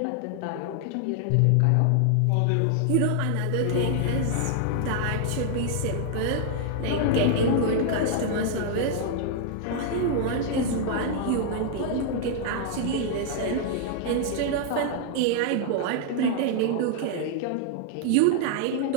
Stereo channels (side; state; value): both; different; correlation 0.00